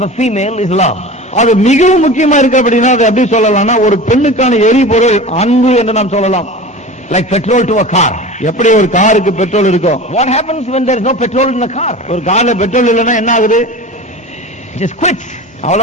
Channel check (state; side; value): normal; both; correlation 0.34